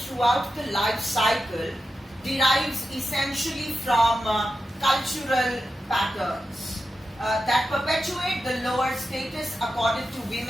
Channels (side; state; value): both; normal; correlation 0.90